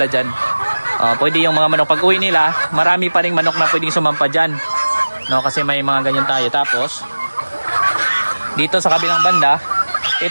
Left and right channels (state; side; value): inverted; both; correlation -1.00